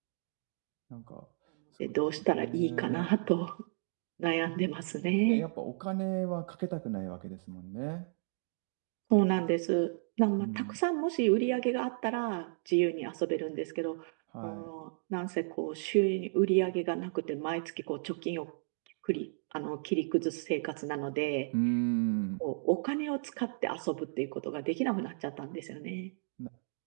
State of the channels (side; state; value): left; silent; digital silence